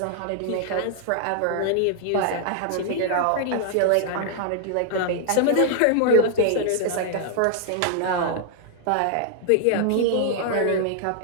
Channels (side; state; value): both; different; correlation 0.00